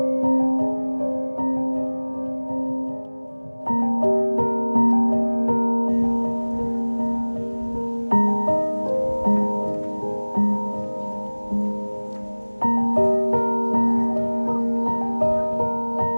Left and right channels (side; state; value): both; inverted; correlation -1.00